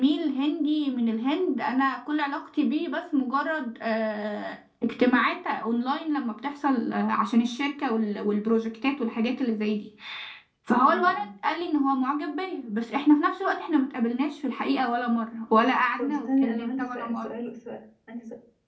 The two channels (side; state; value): both; identical; correlation 1.00